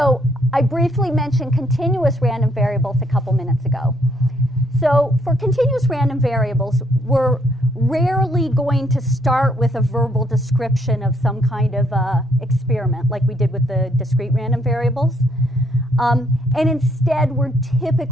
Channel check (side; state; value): both; normal; correlation 0.71